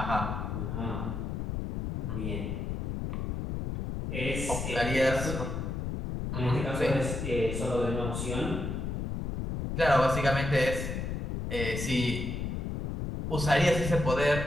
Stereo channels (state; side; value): noise; left; rumble, 3 dB below the sound